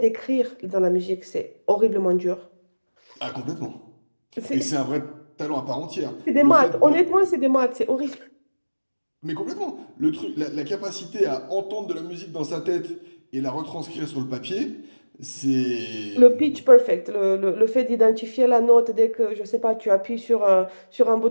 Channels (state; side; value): inverted; both; correlation -1.00